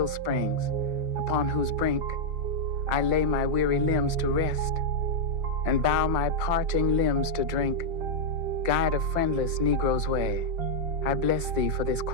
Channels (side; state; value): left; late; 5.6 ms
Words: springs, upon whose brink I lay my weary limbs to rest, and bow my parching limbs to drink. Guide a friendless Negro's way, I bless thee for this